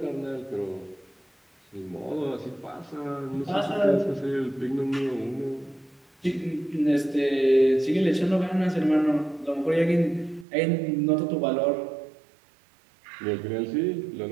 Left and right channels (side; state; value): left; drops out; at 10.5 s